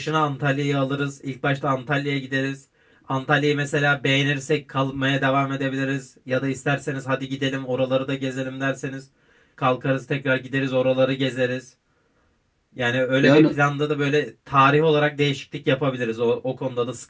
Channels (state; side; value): identical; both; correlation 1.00